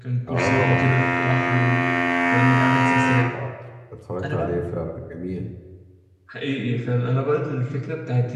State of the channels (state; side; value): identical; both; correlation 1.00